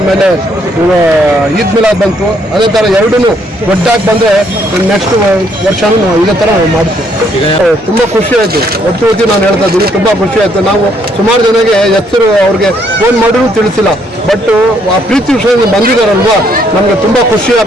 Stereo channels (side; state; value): both; normal; correlation 0.69